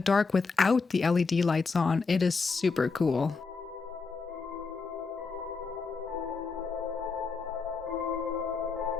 without the LED lights on. It is super cool.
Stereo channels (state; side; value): quieter; right; 4.5 dB